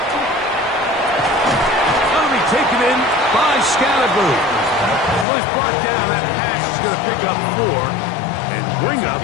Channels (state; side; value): drops out; right; at 5.2 s